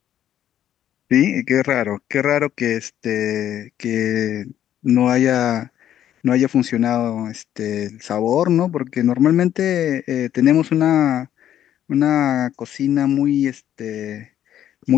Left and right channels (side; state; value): right; quieter; 11.0 dB